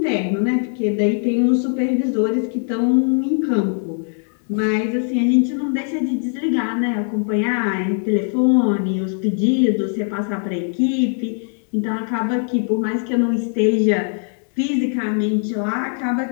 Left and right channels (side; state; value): right; silent; 56 dB below the other